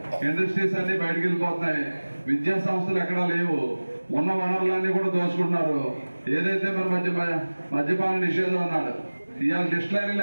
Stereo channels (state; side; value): inverted; both; correlation -1.00